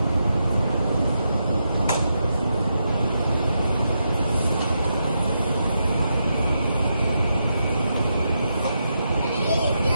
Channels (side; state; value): both; inverted; correlation -0.84